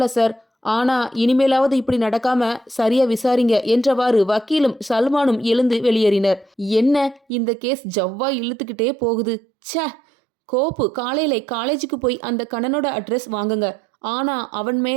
சார், ஆனா இனிமேலாவது இப்படி நடக்காம சரியா விசாரிங்க என்றவாறு வக்கீலும் சல்மானும் எழுந்து வெளியேறினர். என்ன இந்த கேஸ் ஜவ்வா இழுத்துக்கிட்டே போகுது. ச்சே, கோப்பு காலையில காலேஜுக்கு போய் அந்த கண்ணனோட அட்ரஸ் வாங்குங்க. ஆனா அவன்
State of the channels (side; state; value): left; drops out; at 7.2 s